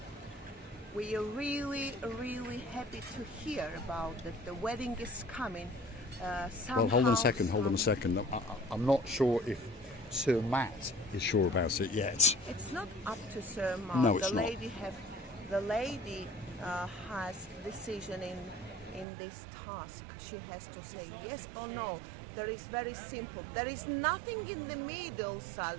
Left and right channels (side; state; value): left; drops out; at 19.1 s